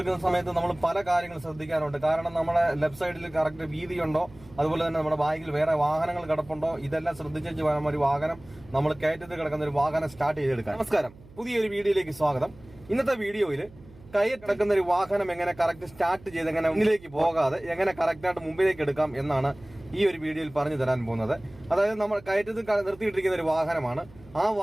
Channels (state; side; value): noise; right; hum, 22 dB below the sound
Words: സമയത്ത് നമ്മൾ പല കാര്യങ്ങൾ ശ്രദ്ധിക്കാറുണ്ട്. കാരണം നമ്മുടെ ലെഫ്റ്റ് സൈഡിൽ കറക്റ്റ് വീതിയുണ്ടോ, അതുപോലെ തന്നെ നമ്മുടെ ബാഗിൽ വേറെ വാഹനങ്ങൾ കിടപ്പുണ്ടോ, ഇതെല്ലാം ശ്രദ്ധിച്ചു വേണം ഒരു വാഹനം നമ്മൾ കയറ്റത്തിൽ കിടക്കുന്ന ഒരു വാഹനം സ്റ്റാർട്ട് ചെയ്തെടുക്കാൻ. നമസ്കാരം, പുതിയൊരു വീഡിയോയിലേക്ക് സ്വാഗതം. ഇന്നത്തെ വീഡിയോയിൽ കയറ്റ് കിടക്കുന്ന ഒരു വാഹനം എങ്ങനെ കറക്റ്റ് സ്റ്റാർട്ട് ചെയ്ത് എങ്ങനെ മുന്നിലേക്ക് പോകാതെ എങ്ങനെ കറക്റ്റായിട്ട് മുമ്പിലേക്ക് എടുക്കാം എന്നാണ് ഈ ഒരു വീഡിയോയിൽ പറഞ്ഞു തരാൻ പോകുന്നത്. അതായത് നമ്മൾ കയറ്റത്തിൽ നിർത്തിയിട്ടിരിക്കുന്ന ഒരു വാഹനമാണ്. ആ